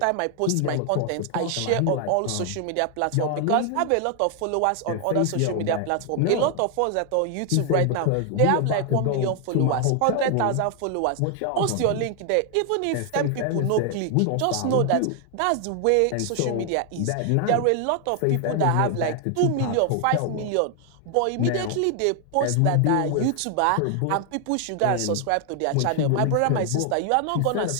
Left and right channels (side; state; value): both; different; correlation 0.00